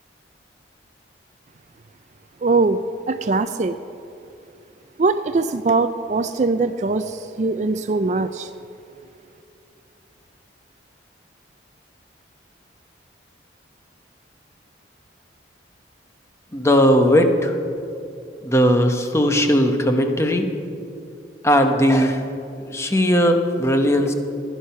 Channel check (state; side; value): normal; both; correlation 0.53